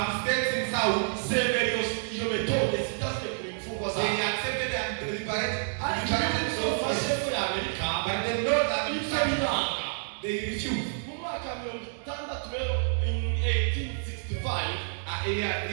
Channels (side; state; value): left; silent; digital silence